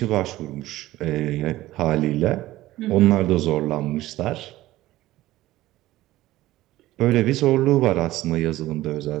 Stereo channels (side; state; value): left; quieter; 16.3 dB